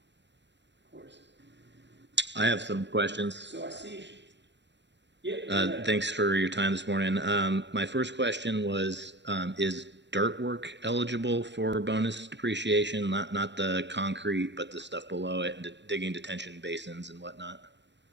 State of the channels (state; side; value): late; left; 0.52 ms